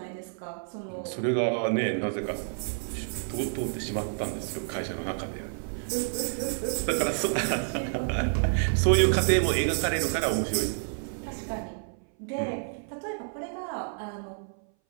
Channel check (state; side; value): silent; left; 58 dB below the other